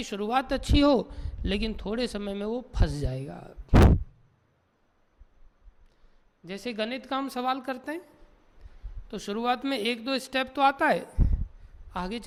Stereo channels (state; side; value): identical; both; correlation 1.00